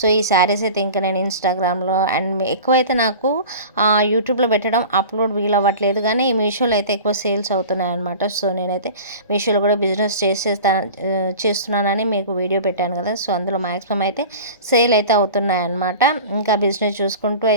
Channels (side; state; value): both; inverted; correlation -0.37